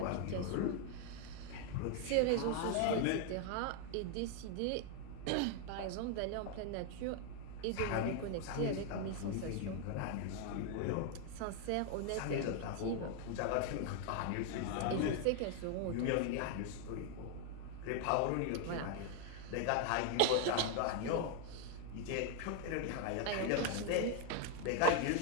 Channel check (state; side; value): different; both; correlation 0.00